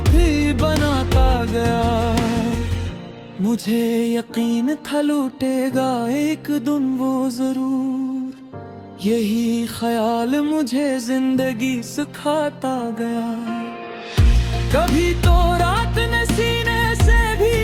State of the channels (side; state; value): both; identical; correlation 1.00